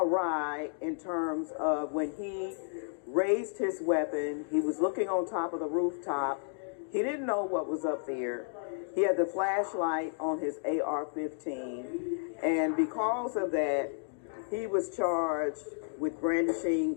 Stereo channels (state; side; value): silent; right; digital silence